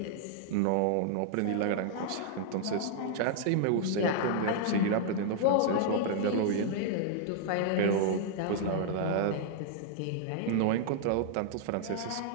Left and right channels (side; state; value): both; different; correlation -0.01